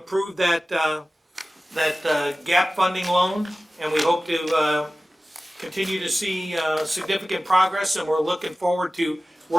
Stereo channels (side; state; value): both; normal; correlation 0.96